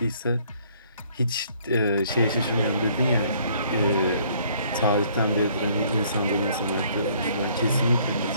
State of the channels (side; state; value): both; inverted; correlation -0.62